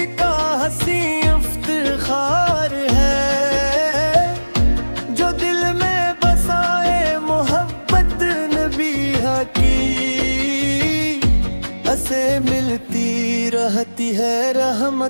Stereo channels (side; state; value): both; inverted; correlation -1.00